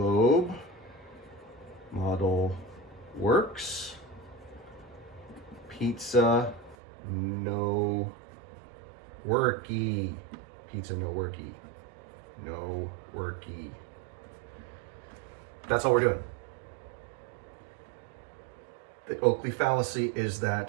model works. Pizza no worky. Pizza no worky. No worky. That's all we're doing. The Oakley fallacy is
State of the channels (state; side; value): drops out; left; at 6.8 s